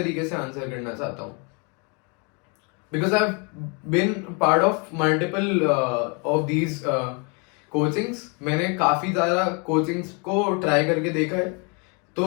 से आंसर करना चाहता हूँ because I been part of multiple of these coachings. मैंने काफी ज्यादा कोचिंग्स को ट्राई करके देखा है,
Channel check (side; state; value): right; quieter; 33.8 dB